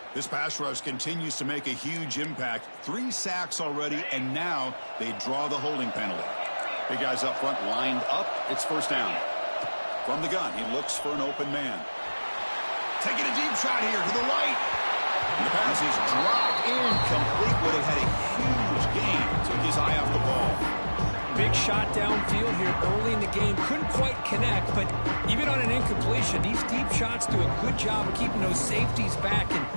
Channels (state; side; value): inverted; both; correlation -1.00